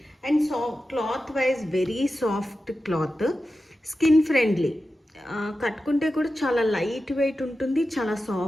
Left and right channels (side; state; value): both; normal; correlation 0.92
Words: And cloth wise very soft cloth, skin friendly, కట్టుకుంటే కూడా చాలా లైట్ వెయిట్ ఉంటుంది, చాలా